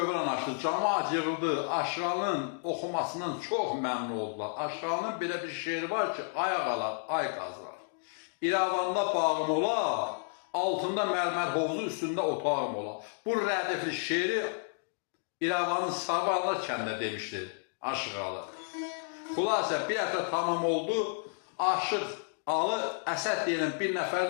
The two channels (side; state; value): right; silent; 57 dB below the other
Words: açdı. Camaat yığıldı. Aşığalının oxumasından çox məmnun oldular. Aşığalının belə bir şeiri var ki, ayaq alar, ay qazlar. İrəvanda bağım ola, altında mərmər hovuzu, üstündə otağım ola. Bu rədifli şeiri İrəvanın Sarvanlar kəndinə demişdi Aşığalı. Xülasə bir həftə tamam oldu. Aşıq alı Əsəd deyilən bir